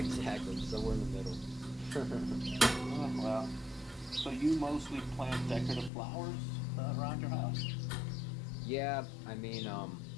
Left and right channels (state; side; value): drops out; right; at 5.9 s